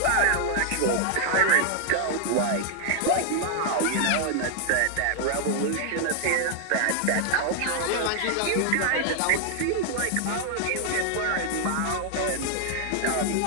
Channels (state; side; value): different; both; correlation 0.00